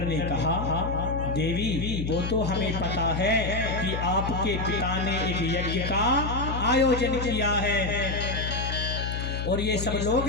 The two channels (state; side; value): noise; left; hum, 3 dB below the sound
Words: ने कहा देवी वो तो हमें पता है कि आपके पिता ने एक यज्ञ का आयोजन किया है और ये सब लोग